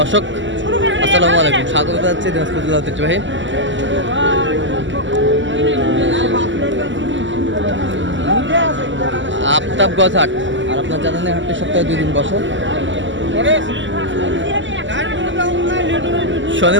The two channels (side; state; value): left; late; 0.54 ms